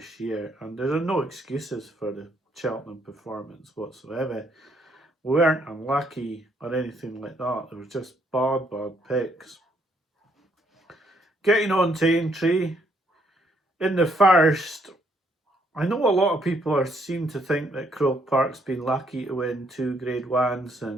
year, and there are no excuses for the Cheltenham performance whatsoever. We weren't unlucky or anything like that. There was just bad picks. Getting on to Aintree, in the first, I know a lot of people seem to think that Croke Park's been lucky to win 2 Grade 1s,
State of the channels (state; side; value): normal; both; correlation 0.70